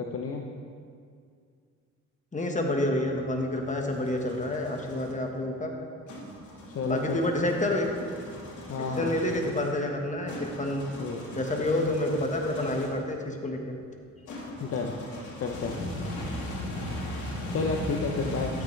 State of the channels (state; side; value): normal; both; correlation 0.36